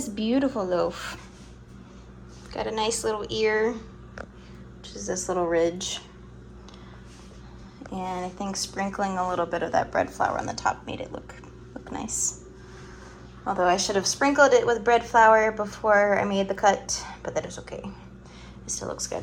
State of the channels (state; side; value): identical; both; correlation 1.00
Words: beautiful loaf. Got a nice little ear, which is this little ridge. And I think sprinkling a little bit of that bread flour on the top made it look nice. Although I should have sprinkled it with bread flour before I made the cut, but that is okay. It still looks good.